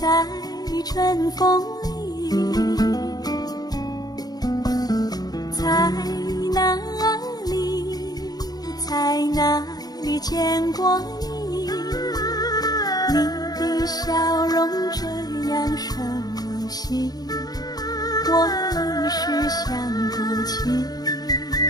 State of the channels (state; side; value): late; right; 0.19 ms